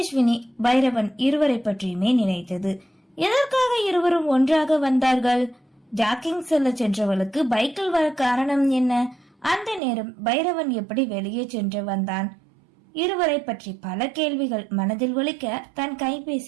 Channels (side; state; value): left; drops out; at 9.8 s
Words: பைரவன் இருவரை பற்றியுமே நினைத்தது. எதற்காக இருவரும் ஒன்றாக வந்தார்கள்? ஜாக்கிங் செல்ல சென்றவளுக்கு பைக்கில் வர காரணம் என்ன? அந்த நேரம் பைரவன் எப்படி வெளியே சென்று வந்தான்? இருவரை பற்றி பல கேள்விகள் மனதில் ஒலிக்க தன்